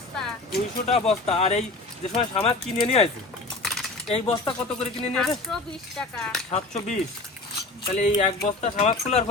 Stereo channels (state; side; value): quieter; right; 3.2 dB